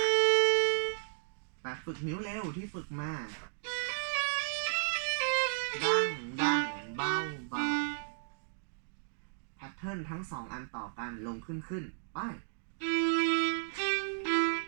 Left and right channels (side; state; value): left; silent; digital silence